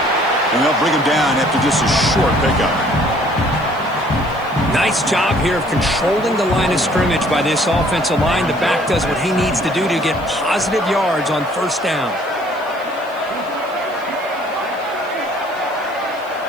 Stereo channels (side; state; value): right; noise; hiss, 26 dB below the sound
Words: And they'll bring him down after just a short pickup. Nice job here of controlling the line of scrimmage by this offensive line. The back does what he needs to do to get positive yards on first down.